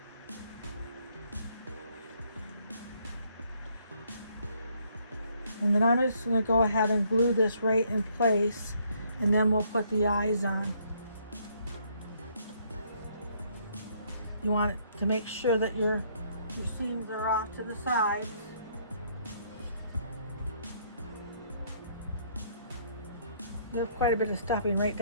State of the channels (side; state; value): both; inverted; correlation -0.67